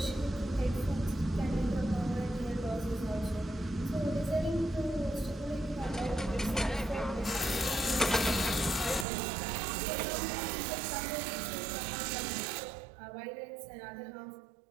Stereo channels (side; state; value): left; drops out; at 9.1 s